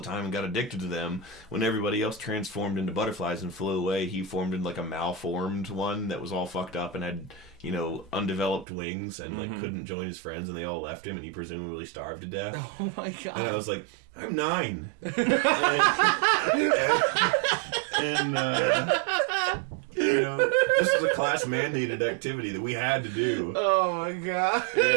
time and got addicted to them, when everybody else transformed into butterflies and flew away, he formed into like a malformed one that was all fucked up and had, undeveloped wings and like couldn't join his friends, and they all left him, and he presumably starved to death. Oh my god. And I was like, I'm 9. and this was a class mandated activity that we had to do. Oh my god.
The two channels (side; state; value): left; drops out; at 8.7 s